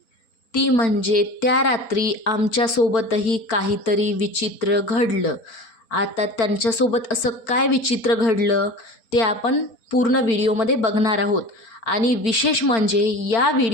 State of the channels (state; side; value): late; right; 4.4 ms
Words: ती म्हणजे त्या रात्री आमच्यासोबतही काहीतरी विचित्र घडलं. आता त्यांच्यासोबत असं काय विचित्र घडलं ते आपण पूर्ण व्हिडिओमध्ये बघणार आहोत. आणि विशेष म्हणजे या